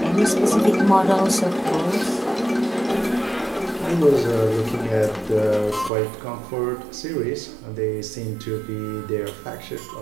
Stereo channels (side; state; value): left; drops out; at 5.9 s